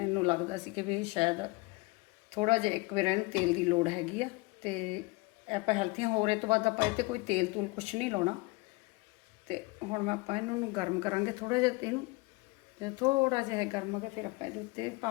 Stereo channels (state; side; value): quieter; right; 25.2 dB